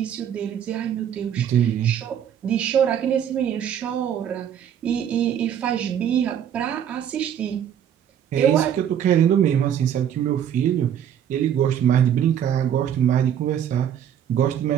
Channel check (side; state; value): left; quieter; 9.5 dB